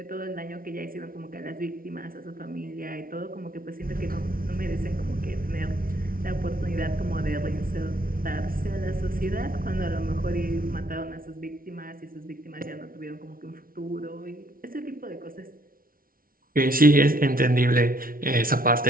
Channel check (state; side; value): late; left; 0.42 ms